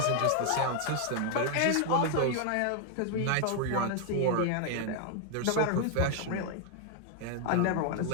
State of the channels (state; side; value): different; both; correlation 0.00